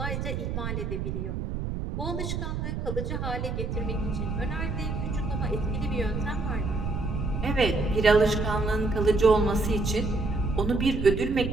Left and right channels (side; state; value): right; noise; rumble, 3 dB below the sound